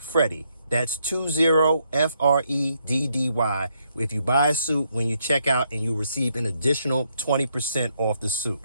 That's 20FREDDY. If you buy a suit when you check out, and you receive an additional 20% off the suit.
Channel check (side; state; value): both; inverted; correlation -0.76